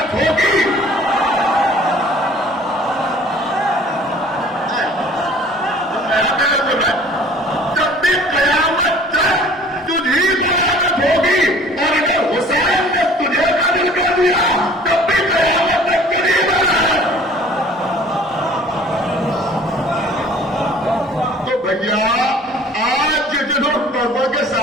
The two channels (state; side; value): normal; both; correlation 0.50